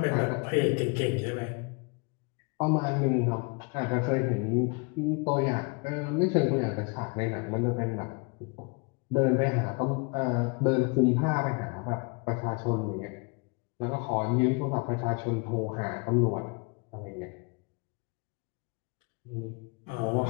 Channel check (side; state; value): right; quieter; 31.2 dB